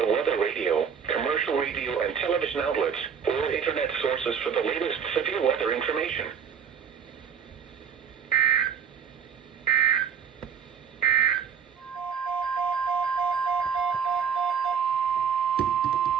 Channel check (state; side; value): quieter; left; 7.2 dB